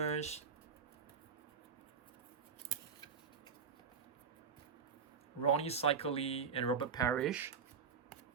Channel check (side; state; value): left; quieter; 6.0 dB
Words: Ronnie Cycli, and Robert Parrish.